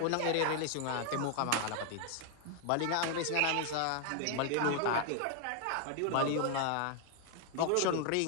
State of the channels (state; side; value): different; both; correlation 0.00